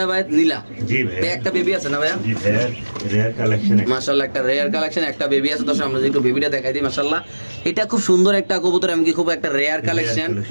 নীলা। জি ভাই, একটা বেবি আছে না ভাইয়া? জি ভাই, রেয়ার কালেকশন। মাশাআল্লাহ, একটা রেয়ার কালেকশন, একটা বেবি আছে। দর্শক আমরা একটু বেবিটা দেখাই দিই। মাশাআল্লাহ, এটা খুব সুন্দর একটা কবুতর, এমনকি খুব একটা রেয়ার কালেকশন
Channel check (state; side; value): inverted; both; correlation -1.00